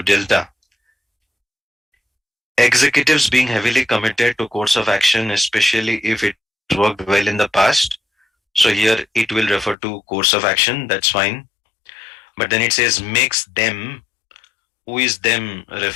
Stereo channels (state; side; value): drops out; right; at 9.8 s